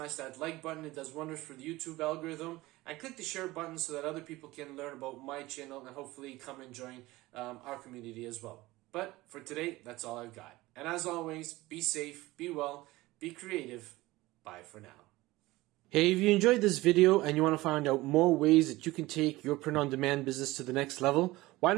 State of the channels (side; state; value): left; quieter; 19.2 dB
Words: that like button. It does wonders for the YouTube algorithm. And click the share button so that other people can learn about my channel and hopefully come and join our community as well. But for today, that's all I've got. And as always, be safe, be well, be creative. Bye for now. Hey, if you enjoyed this video and you want to find out more ways that you can take your print-on-demand business to the next level, why